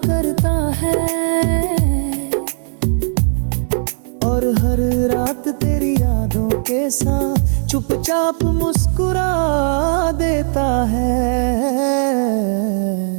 करता है, और हर रात तेरी यादों के साथ चुपचाप मुस्कुरा देता है।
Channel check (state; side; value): silent; left; 58 dB below the other